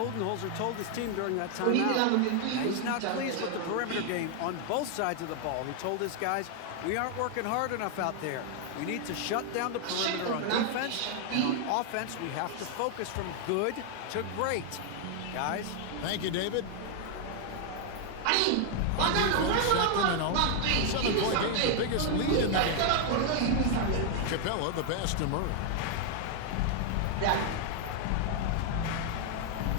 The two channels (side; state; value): both; different; correlation 0.00